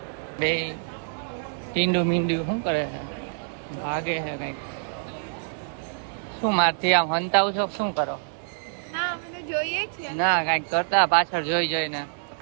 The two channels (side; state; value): left; silent; digital silence